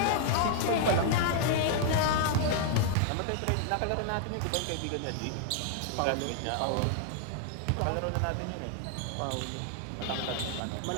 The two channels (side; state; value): both; different; correlation 0.00